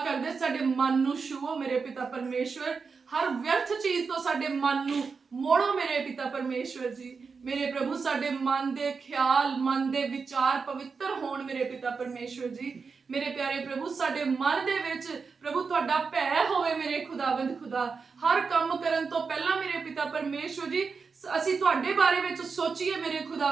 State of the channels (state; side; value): quieter; left; 5.1 dB